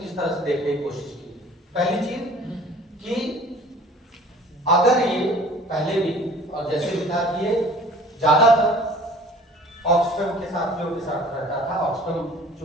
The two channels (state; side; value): normal; both; correlation 0.49